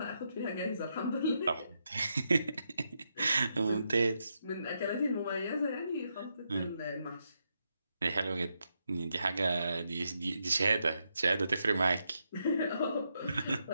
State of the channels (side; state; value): both; inverted; correlation -0.82